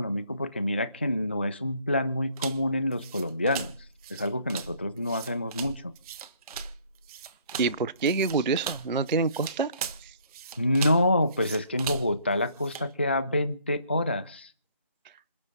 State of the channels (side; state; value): both; inverted; correlation -0.61